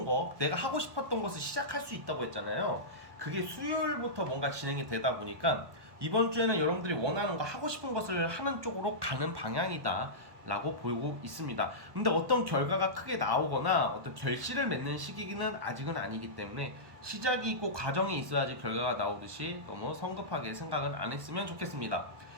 거, 내가 하고 싶었던 것을 시작할 수 있다고 했잖아요. 그게 수요일부터 뭔가 진행이 되다 보니까 이번 주에는 여러분들이 원하는 거, 하고 싶은 것을 하는 쪽으로 가는 방향이다 라고 보고 있습니다. 근데 어떤 결과가 크게 나오거나 어떤 결실을 맺는 시기는 아직은 아니기 때문에 시작이 있고 과정이 있어야지 결과가 나오듯이 너무 성급하게 생각은 안 했으면 좋겠습니다.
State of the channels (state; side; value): late; left; 1.2 ms